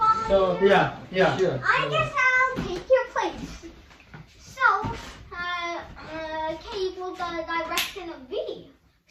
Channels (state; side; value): identical; both; correlation 1.00